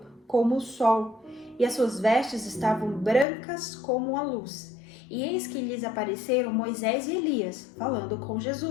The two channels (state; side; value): drops out; right; at 3.2 s